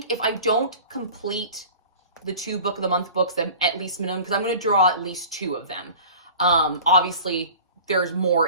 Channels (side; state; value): both; inverted; correlation -0.42